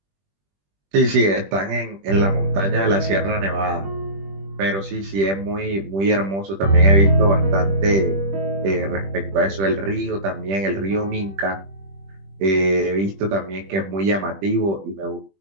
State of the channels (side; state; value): left; late; 20 ms